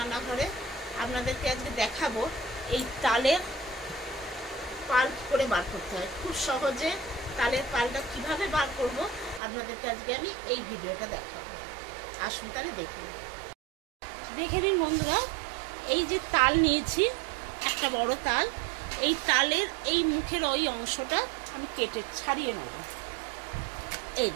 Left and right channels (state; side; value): drops out; left; at 9.4 s